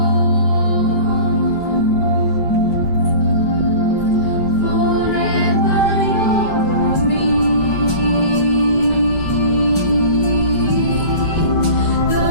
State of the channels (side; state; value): right; late; 5.1 ms